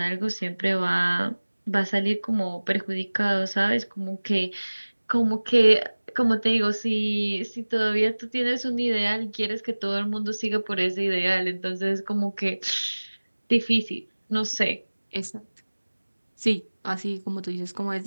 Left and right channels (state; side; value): inverted; both; correlation -1.00